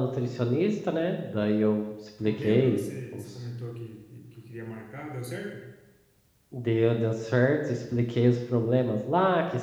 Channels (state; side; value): identical; both; correlation 1.00